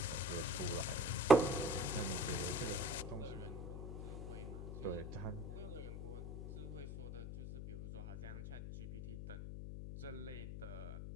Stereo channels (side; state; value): left; noise; hum, 6 dB below the sound